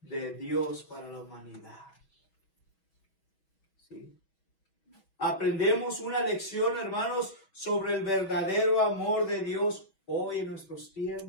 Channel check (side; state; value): right; late; 6.2 ms